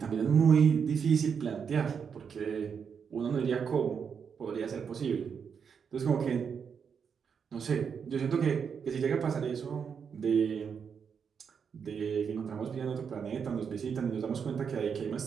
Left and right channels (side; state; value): left; quieter; 6.7 dB